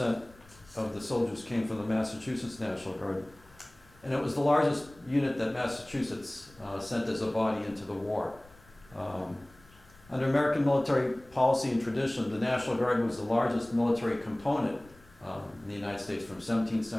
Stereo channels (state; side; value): noise; left; rumble, 26 dB below the sound